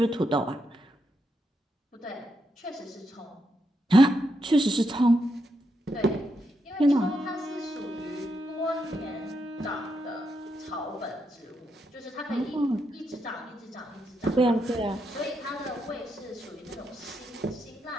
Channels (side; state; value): both; normal; correlation 0.82